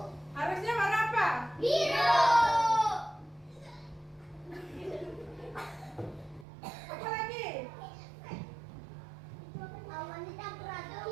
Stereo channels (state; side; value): drops out; left; at 6.5 s